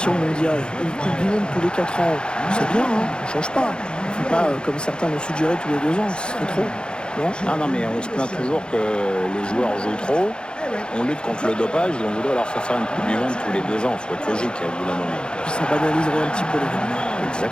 mondiales. Une Coupe du Monde tous les 4 ans, c'est bien, hein, on ne change pas. Il ne faut pas, comme certains l'ont suggéré, tous les 2 ans, ce serait trop. Non, mais on se plaint toujours que les joueurs jouent trop. On lutte contre le dopage et on voudrait leur faire une Coupe du Monde tous les 2 ans. Il faut être logique à bout d'un moment. Puis ça banaliserait un petit peu les gars.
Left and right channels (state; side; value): late; right; 0.050 ms